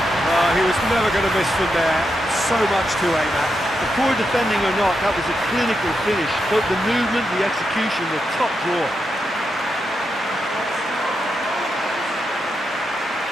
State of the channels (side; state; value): both; normal; correlation 0.85